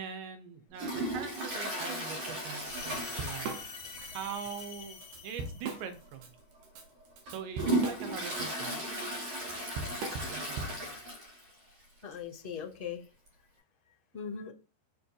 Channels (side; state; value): left; late; 11 ms